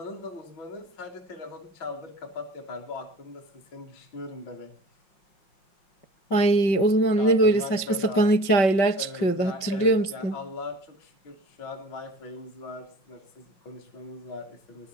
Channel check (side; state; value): right; late; 5.2 ms